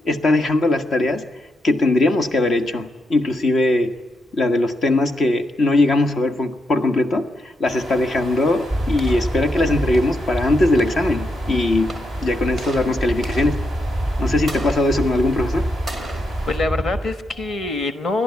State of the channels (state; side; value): normal; both; correlation 0.82